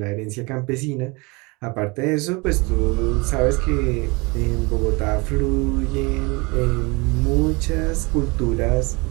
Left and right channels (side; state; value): left; quieter; 26.8 dB